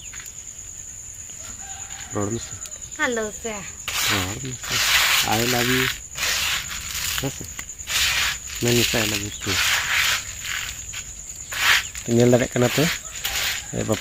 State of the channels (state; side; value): identical; both; correlation 1.00